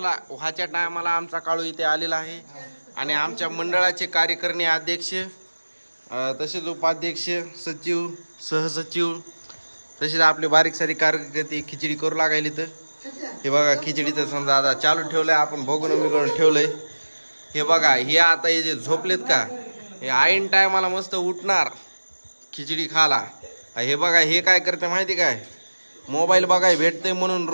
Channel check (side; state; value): both; inverted; correlation -1.00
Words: टायमाला आमचा काळू इथे आलेला आहे आणि आमच्या मंडळाचे कार्यकारिणी अध्यक्ष, तसेच उपाध्यक्ष, सचिव, सहसचिव, तसेच आपले बारीक सारी कार्यकर्ते खिचडी करू लागायली. तर हे बघा खिचडीचं समजा आता चालू ठेवलंय, आपण बघून ठेवलंय. हे बघा, हे आता हे जे झोपलेत का, हे आईन टायमाला मस्त उठणार खिचडी खाला. हे बघा हे काय करते माहिती काय, मोबाईल बघाय भेटते म्हणून